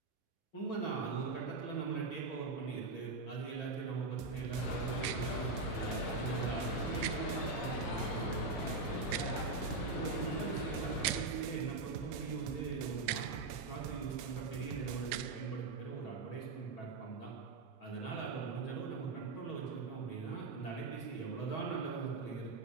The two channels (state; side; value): quieter; left; 3.6 dB